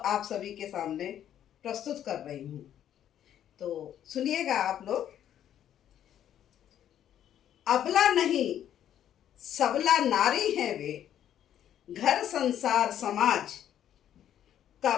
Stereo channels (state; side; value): quieter; right; 10.6 dB